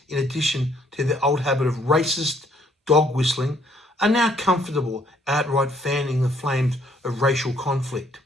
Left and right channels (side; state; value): both; normal; correlation 0.66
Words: in addition to their old habit of racist dog whistling, are now comfortable outright fanning the flames of racial conflict."